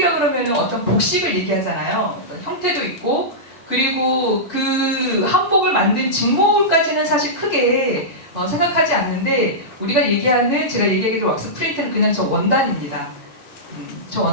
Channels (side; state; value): both; normal; correlation -0.14